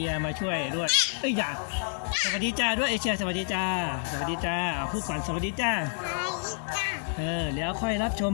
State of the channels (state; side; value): silent; right; digital silence